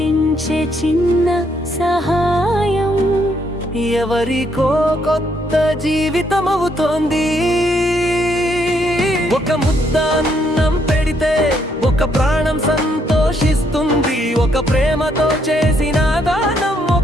చిన్న సహాయం ఎవరికో కొత్త జీవితం అవుతోంది. ఒక ముద్ద అన్నం పెడితే ఒక ప్రాణం సంతోషిస్తుంది. ఒక ప్రేమతో చేసిన దానం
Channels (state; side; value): normal; both; correlation 0.72